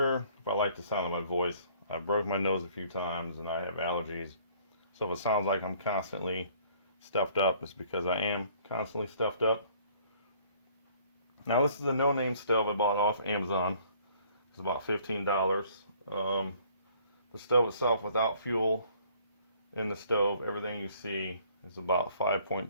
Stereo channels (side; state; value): both; inverted; correlation -0.58